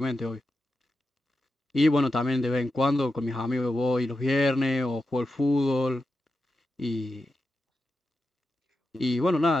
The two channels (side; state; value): both; normal; correlation 0.90